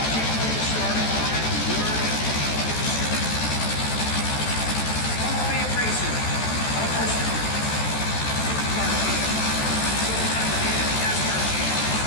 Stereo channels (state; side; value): late; right; 14 ms